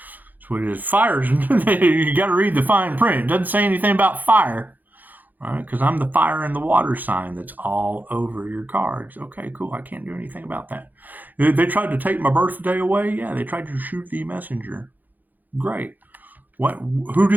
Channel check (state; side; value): late; left; 0.084 ms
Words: That's what it is. Fires, you got to read the fine print. It doesn't say anything about fire. Right? Because I'm the fire and the water sign that's all over your cards. Okay, cool. I can't do anything about that. They tried to take my birthday away. Yeah, they tried to shoot the messenger. Great. Who